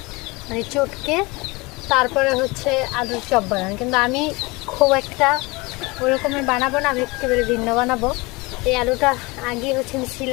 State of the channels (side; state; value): right; quieter; 24.5 dB